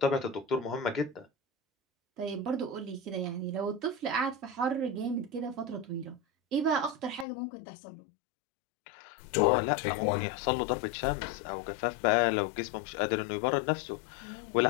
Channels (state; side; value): drops out; right; at 7.2 s